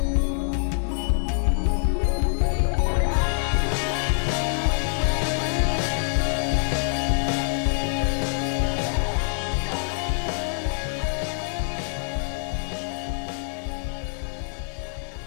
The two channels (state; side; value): silent; right; digital silence